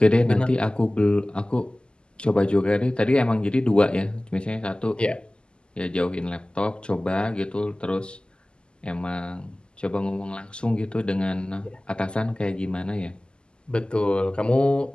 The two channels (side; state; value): right; late; 0.049 ms